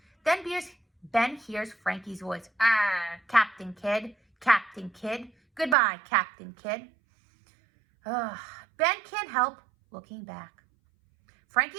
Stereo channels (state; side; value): drops out; left; at 5.8 s